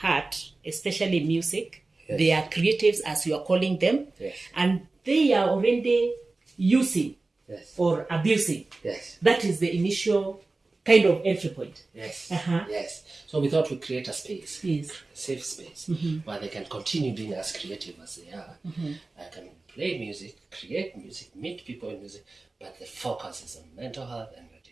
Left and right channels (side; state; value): left; quieter; 3.4 dB